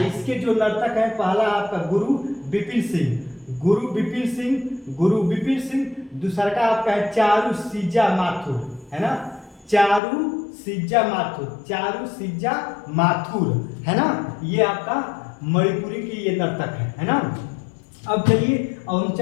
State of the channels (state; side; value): drops out; right; at 10.0 s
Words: जो नर्तक है पहला आपका गुरु बिपिन सिंह, दूसरा का आपका है चारू सिज्जा माथुर, है ना। ये आपका मणिपुरी की ये नर्तक है ना। अब चलिए हम